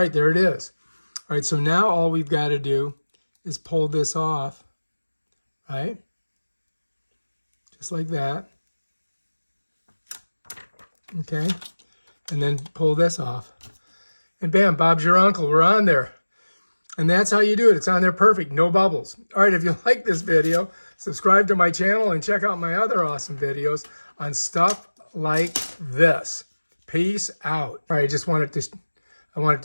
there it is. All right, so now all we've got to do is pull this off, right? Just like that. Okay. And then pull this off. And bam, Bob's your uncle. We're on there. And that's how you do it. It's on there perfect. No bubbles. All right, if you like this video, subscribe to my channel and check out my other awesome videos on stuff like this. Peace out. All right, I wanted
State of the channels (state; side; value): inverted; both; correlation -1.00